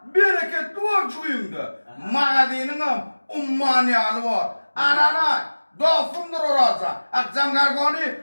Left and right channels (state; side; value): inverted; both; correlation -1.00